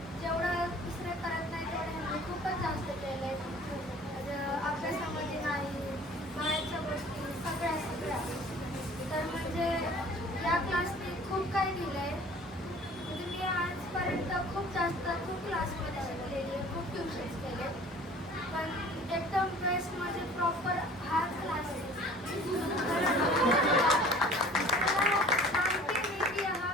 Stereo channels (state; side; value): normal; both; correlation 0.48